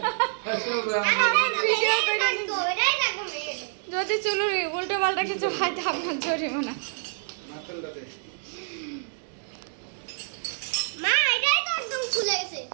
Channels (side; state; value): left; silent; 60 dB below the other